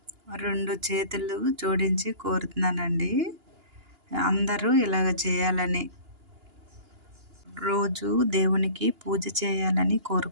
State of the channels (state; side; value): late; left; 2.9 ms